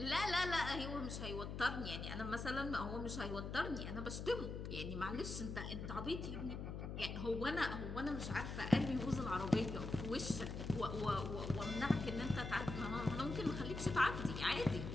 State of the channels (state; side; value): noise; left; hum, 5 dB below the sound